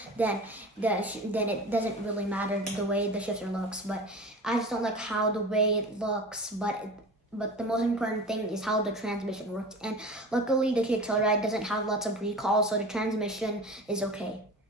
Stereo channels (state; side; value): normal; both; correlation 0.35